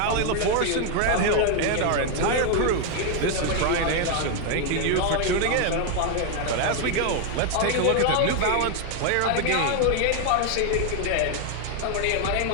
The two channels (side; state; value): both; different; correlation 0.01